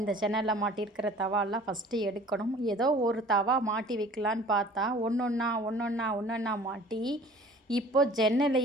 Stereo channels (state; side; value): normal; both; correlation 0.48